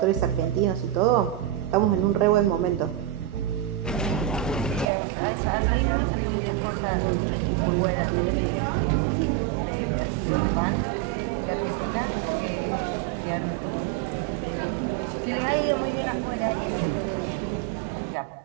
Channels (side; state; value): left; drops out; at 4.9 s